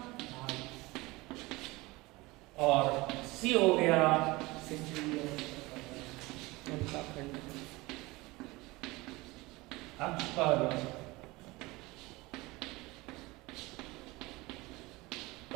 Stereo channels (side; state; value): left; quieter; 21.9 dB